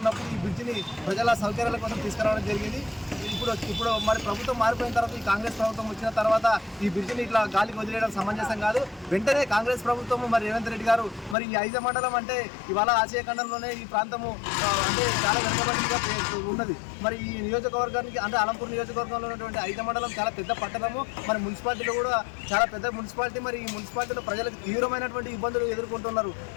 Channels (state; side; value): drops out; right; at 11.4 s